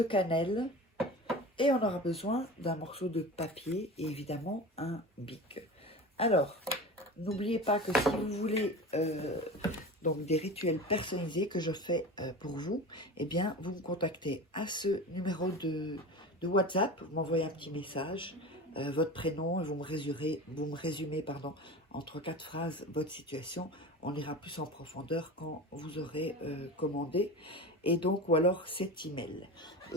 cannelle et on aura besoin d'un morceau de papier et évidemment un bic. Alors, n'oubliez pas que si vous voulez donc des rituels personnalisés que je fais pour vous, eh bien, vous me contactez à ce numéro de WhatsApp, vous m'envoyez un petit message, votre prénom, et vous me résumez pardon, en 3-4 phrases votre situation. On ira plus en profondeur quand vous aurez commandé, et donc, ou alors cet email. Et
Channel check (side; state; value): both; normal; correlation 0.31